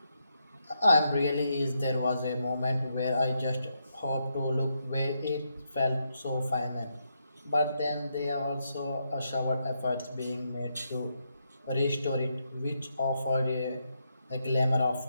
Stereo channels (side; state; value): both; inverted; correlation -0.80